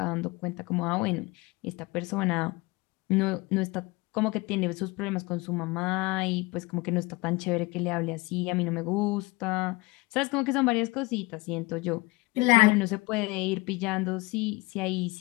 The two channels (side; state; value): right; quieter; 23.4 dB